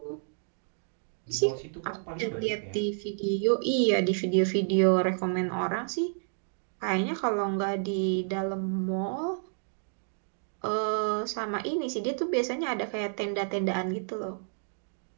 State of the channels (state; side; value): silent; left; digital silence